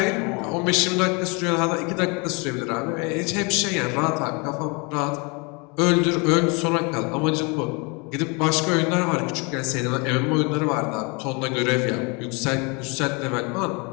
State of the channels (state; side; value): quieter; right; 30.5 dB